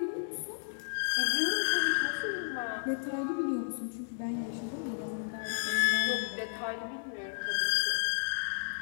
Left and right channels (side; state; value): right; silent; digital silence